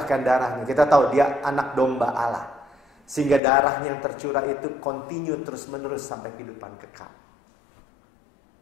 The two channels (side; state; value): right; drops out; at 3.4 s